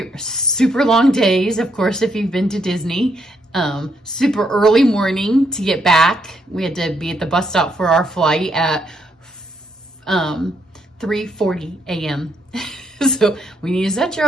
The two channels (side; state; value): both; normal; correlation 0.75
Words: were super long days, of course, if you've been to Disney. Super early morning to get back. We had to be at the bus stop for our flight at 3:40 a.m. So when you set your